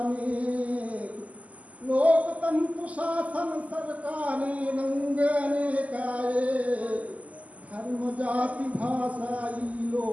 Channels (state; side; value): late; left; 0.071 ms